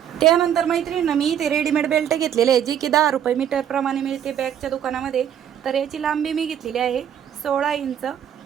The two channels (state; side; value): quieter; left; 9.5 dB